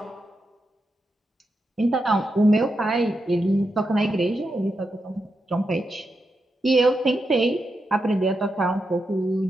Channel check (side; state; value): both; normal; correlation 0.86